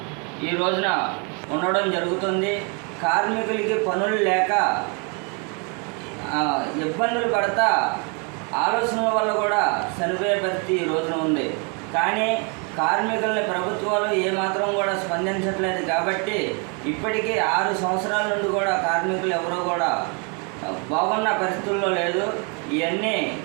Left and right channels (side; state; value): left; quieter; 35.3 dB